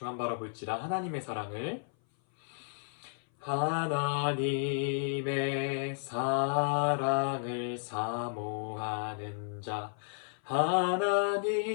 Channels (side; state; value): right; silent; 56 dB below the other